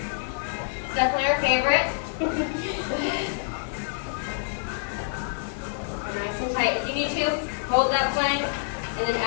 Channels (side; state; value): right; silent; 60 dB below the other